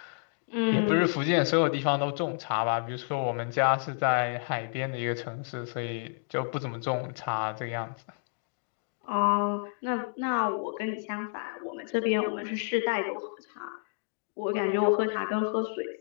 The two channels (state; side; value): silent; right; digital silence